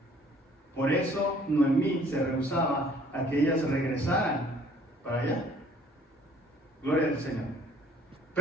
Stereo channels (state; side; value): normal; both; correlation 0.57